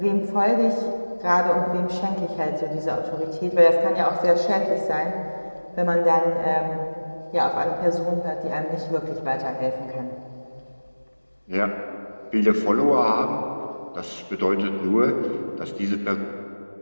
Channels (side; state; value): both; inverted; correlation -1.00